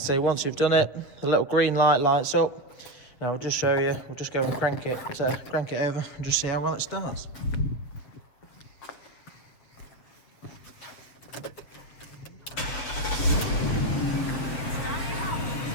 once you've done it, the little green light lights up. Now we'll just show you, we'll just go and crank it over and just see how well it starts.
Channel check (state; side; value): late; right; 7.6 ms